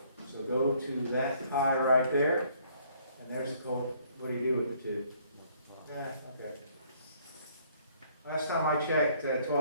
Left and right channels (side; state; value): both; inverted; correlation -0.62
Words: So go to that pi right there, and there's the code. What do you do with the two? Yeah, okay. Last time I checked,